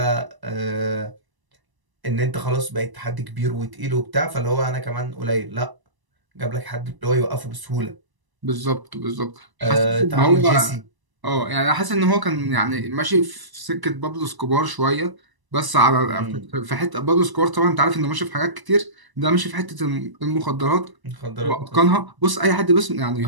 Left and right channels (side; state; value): left; late; 1.0 ms